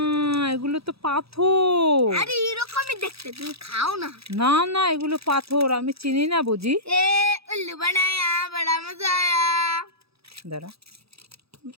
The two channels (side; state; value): left; late; 0.77 ms